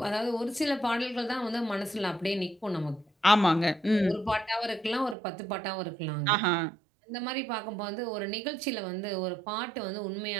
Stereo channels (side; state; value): left; drops out; at 5.2 s